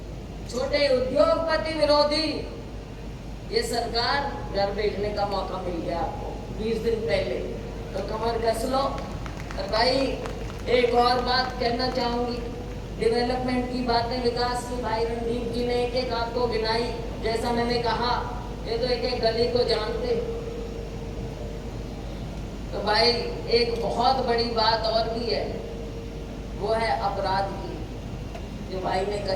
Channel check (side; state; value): both; identical; correlation 1.00